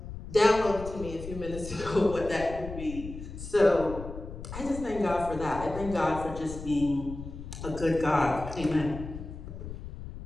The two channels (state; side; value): noise; left; rumble, 10 dB below the sound